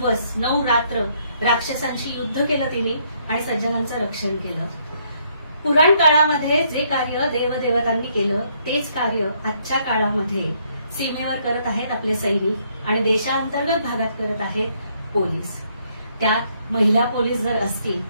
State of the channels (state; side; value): inverted; both; correlation -0.70